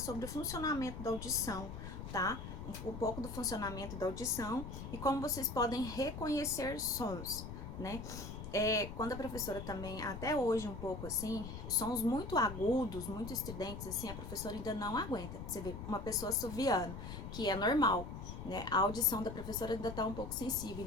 o funcionamento da audição, tá? Um pouco do funcionamento da audição e como vocês podem reconhecer sons, né? Quando a professora também, até hoje um pouco assim, sons muito agudos, muito estridentes, assim, a professora ainda não aguenta. Você vê uma pessoa assoviando, que é normal, né? A audição da professora ainda tá um pouco sensível,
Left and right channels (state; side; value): noise; left; rumble, 8 dB below the sound